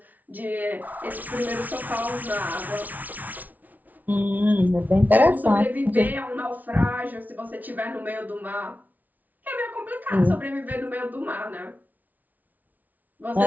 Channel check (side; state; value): left; late; 0.077 ms